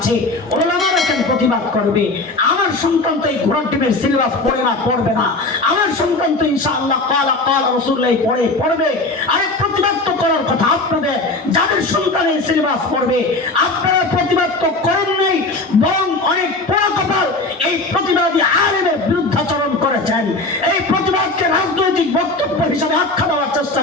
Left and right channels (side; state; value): right; quieter; 3.1 dB